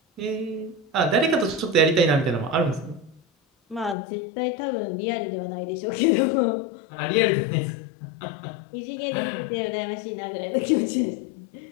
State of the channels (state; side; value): drops out; right; at 4.0 s